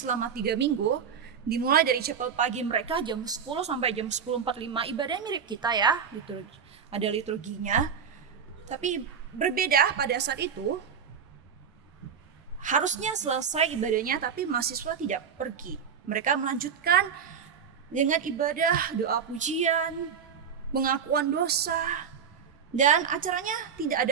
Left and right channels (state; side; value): quieter; left; 7.0 dB